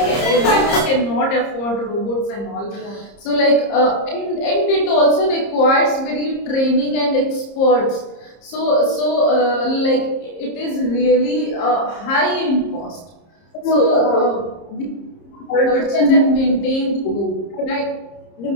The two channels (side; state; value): right; late; 30 ms